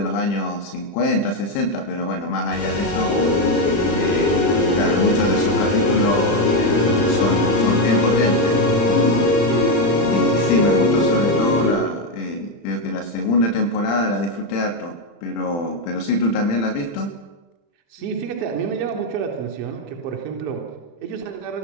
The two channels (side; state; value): right; late; 35 ms